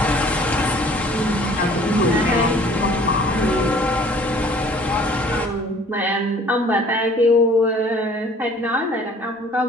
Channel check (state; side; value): normal; both; correlation 0.53